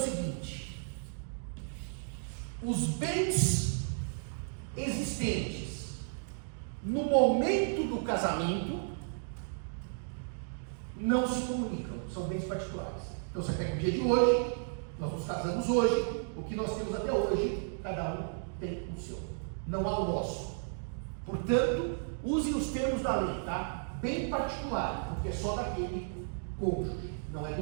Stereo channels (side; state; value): left; silent; digital silence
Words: os bens existentes no momento do casamento não se comunicam, são bens particulares. Então você pega o dia de hoje, nós nos casamos hoje, o que nós temos até hoje, cada um tem o seu, não há o nosso. Portanto, usem os termos da lei, tá? Bem particular, porque é só daquele cônjuge, não é